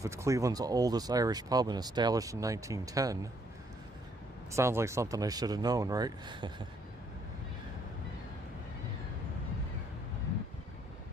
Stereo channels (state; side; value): normal; both; correlation 0.69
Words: it's Cleveland's oldest Irish pub and established in 1910, sounds like something I should have known, right?